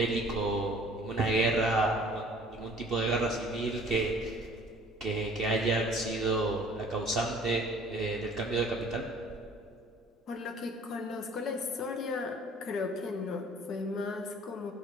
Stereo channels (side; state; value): both; normal; correlation 0.52